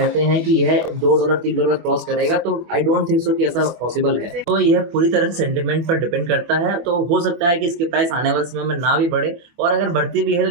हैं कि यह $2 $3 क्रॉस करेगा, तो आई डोंट थिंक सो कि ऐसा पॉसिबल है। तो यह पूरी तरह से सेंटिमेंट पर डिपेंड करता है। तो हो सकता है कि इसकी प्राइस आने वाले समय में ना भी बढ़े, और अगर बढ़ती भी है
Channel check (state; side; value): late; left; 24 ms